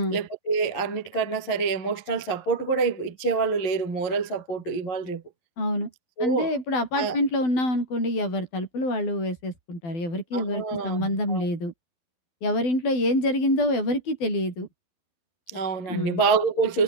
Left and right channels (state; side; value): late; right; 11 ms